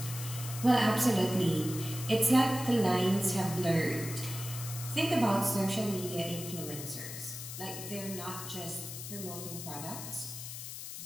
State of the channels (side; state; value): left; noise; hiss, 9 dB below the sound